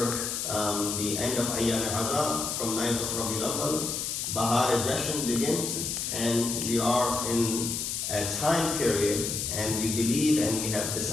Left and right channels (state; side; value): noise; left; hiss, 2 dB below the sound